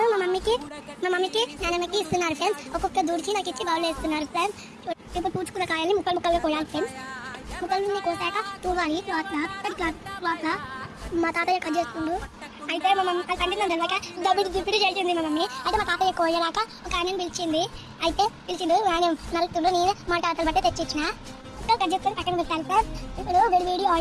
మా మమ్మీకి నాన్నమ్మకి ఇస్తున్నారు ఫ్రెండ్స్. ఒక్కొక్క దూడికి నాకు ఇచ్చి బౌల్ వేస్తున్నారు ఫ్రెండ్స్. ఇప్పుడు పూచుకున్న కాయల్ని ముక్కలుగా కోయాలి ఫ్రెండ్స్. ముక్కల్ని కోసాక తూగాలి క్లాత్లా. మా తాతయ్య కట్ చేస్తుండు. అయితే మా మమ్మీ కంటే తెలియక దిప్పిడి చేసింది మా మమ్మీ. అయితే మా తాతయ్య కోయలాక ఒక ఆయన పిలిచిండు. ఆయన నలుపుతుండు. నేను మా తాతలు బట్టే తెచ్చిచ్చిన కట్ చేసుకొని పక్కన పెట్టాలి సార్. ఇప్పుడు వేడి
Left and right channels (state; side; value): identical; both; correlation 1.00